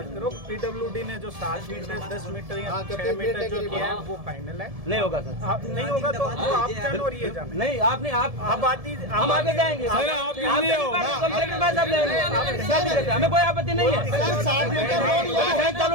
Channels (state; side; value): late; left; 1.7 ms